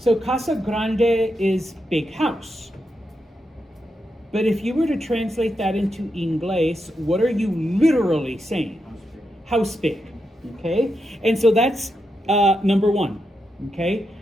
casa grande is big house. But if you were to translate that into Inglés, what are you literally saying? House big. Okay? And so that's number one. Okay?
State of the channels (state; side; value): normal; both; correlation 0.85